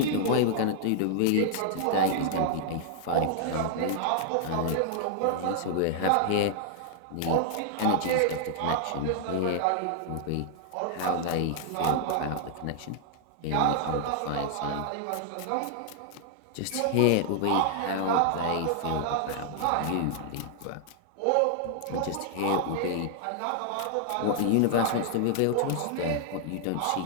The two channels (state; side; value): different; both; correlation -0.01